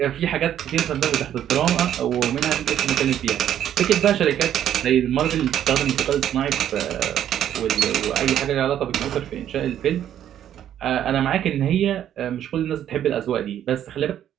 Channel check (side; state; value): left; quieter; 10.6 dB